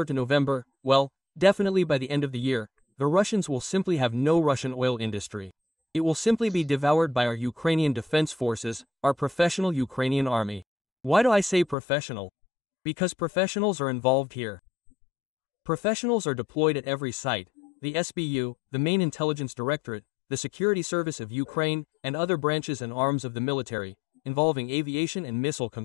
to November, well, definitely by the end of the year, the Russians will simply have no Russian oil industry. It will simply be devoured by our Ukrainian defense forces, our professional Ukrainian army. Why do I say professional? Because professionals are involved here. Professionals are deployed at every site, the SBU, the Main Intelligence Directorate, the Security Service of Ukraine, and other branches and arms of the military, involving aviation and missile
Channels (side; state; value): right; drops out; at 11.8 s